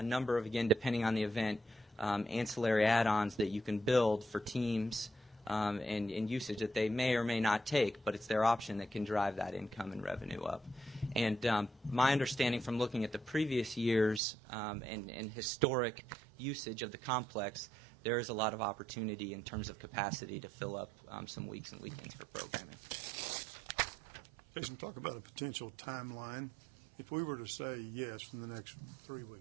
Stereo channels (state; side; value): drops out; left; at 14.2 s